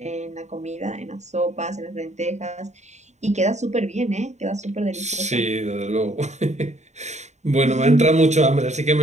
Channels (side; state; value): left; late; 0.33 ms